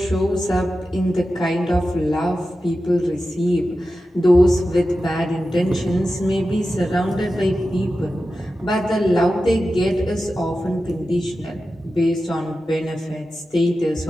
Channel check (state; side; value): normal; both; correlation 0.92